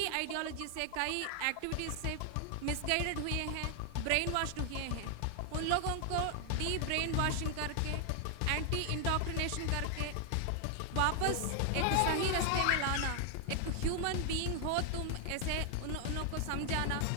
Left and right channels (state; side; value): different; both; correlation 0.00